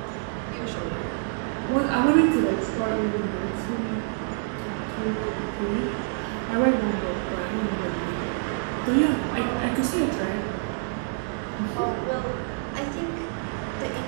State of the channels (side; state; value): left; silent; digital silence